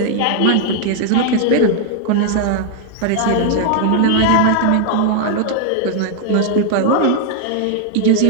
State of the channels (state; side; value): different; both; correlation 0.00